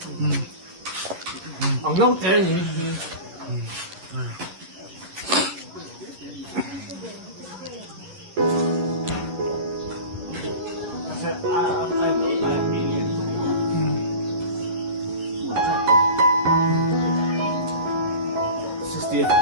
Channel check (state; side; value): late; left; 11 ms